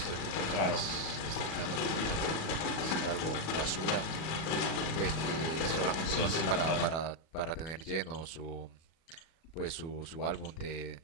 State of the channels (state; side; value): late; right; 37 ms